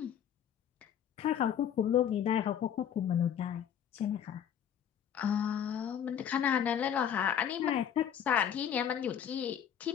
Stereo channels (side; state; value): right; quieter; 9.0 dB